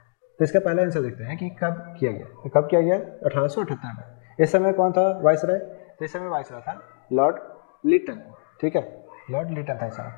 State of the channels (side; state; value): right; silent; digital silence